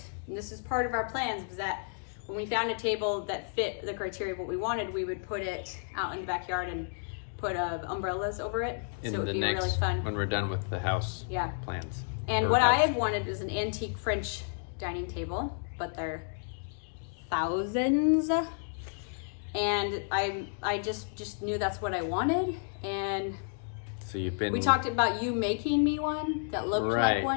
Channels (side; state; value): right; silent; digital silence